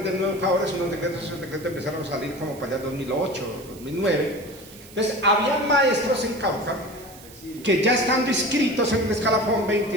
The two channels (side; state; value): right; noise; hiss, 20 dB below the sound